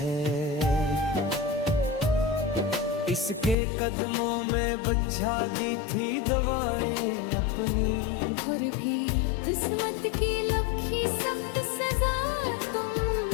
इसके कदमों में बजा दी थी दवाएं अपनी, और भी किस्मत की लखी सख्त सजा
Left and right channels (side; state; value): right; drops out; at 3.6 s